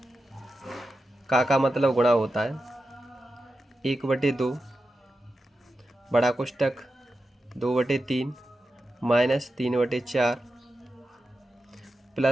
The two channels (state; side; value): normal; both; correlation 0.91